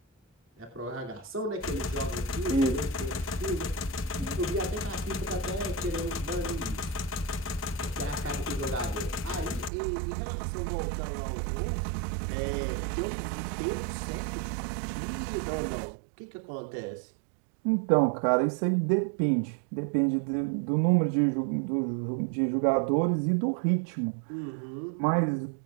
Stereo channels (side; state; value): left; drops out; at 9.7 s